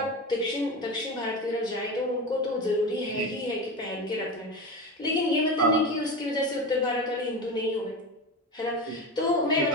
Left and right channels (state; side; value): normal; both; correlation 0.24